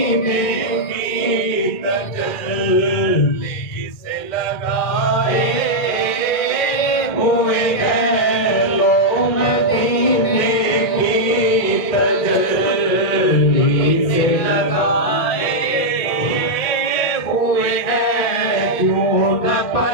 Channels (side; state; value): right; late; 2.2 ms